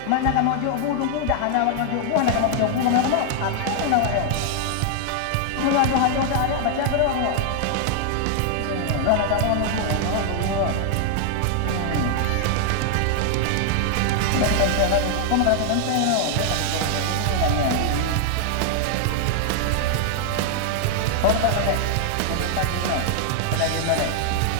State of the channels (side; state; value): both; different; correlation 0.00